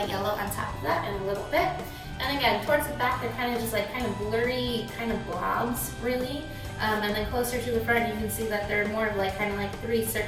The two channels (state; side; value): identical; both; correlation 1.00